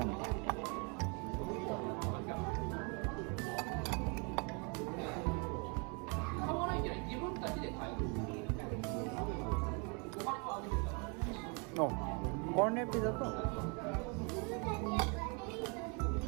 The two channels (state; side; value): quieter; left; 33.7 dB